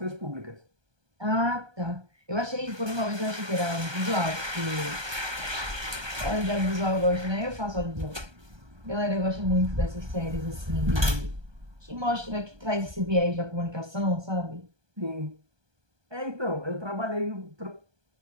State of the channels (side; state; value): left; late; 1.2 ms